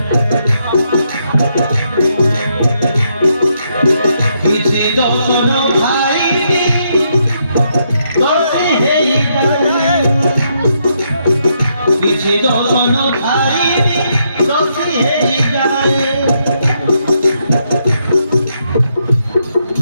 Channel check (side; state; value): both; inverted; correlation -0.77